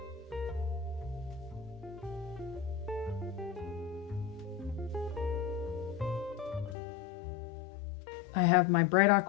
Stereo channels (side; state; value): right; drops out; at 6.8 s